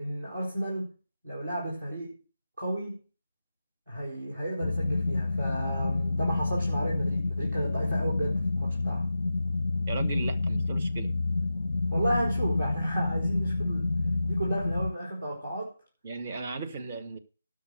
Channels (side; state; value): both; inverted; correlation -0.92